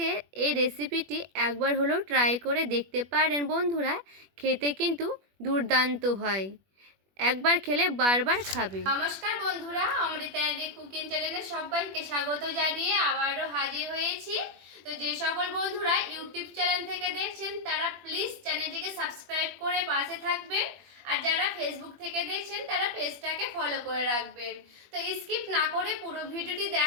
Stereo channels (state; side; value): late; left; 21 ms